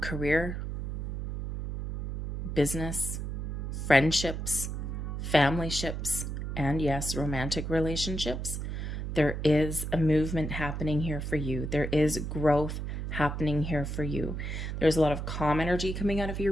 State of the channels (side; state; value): right; noise; hum, 4 dB below the sound